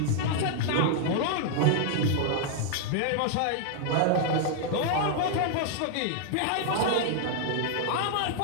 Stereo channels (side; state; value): both; different; correlation 0.00